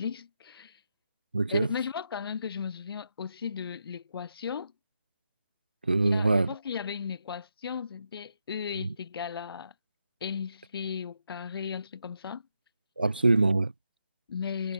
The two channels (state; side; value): inverted; both; correlation -0.83